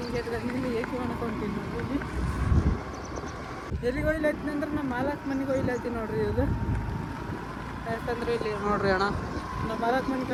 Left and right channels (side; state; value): both; identical; correlation 1.00